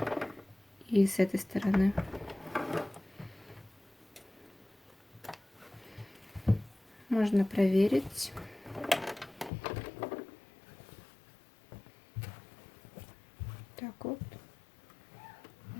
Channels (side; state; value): right; drops out; at 9.5 s